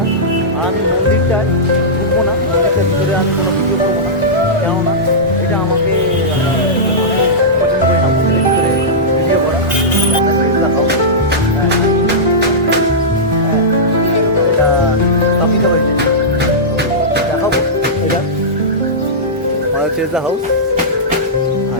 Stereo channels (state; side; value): normal; both; correlation -0.13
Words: আর আমি মন্দিরটায় ঢুকবো না, মন্দিরটার ভিতরে আমি কোনো ভিডিও করবো না, কেননা এটা আমাকে পছন্দ করি না মন্দিরের ভিতরে ভিডিও করা। দেখাবো, হ্যাঁ হ্যাঁ, এটা স্থাপিত হয়েছে, দেখাবো। এটা চেজা হাউস, আর